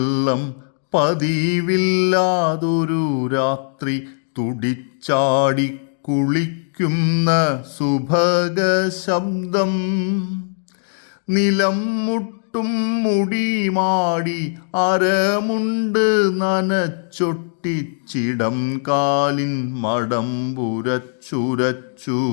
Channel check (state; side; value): silent; right; digital silence